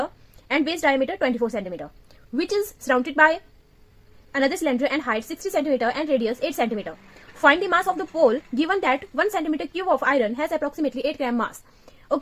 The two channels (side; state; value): both; identical; correlation 1.00